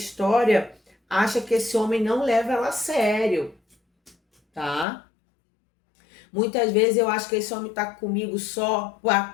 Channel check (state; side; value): drops out; right; at 4.9 s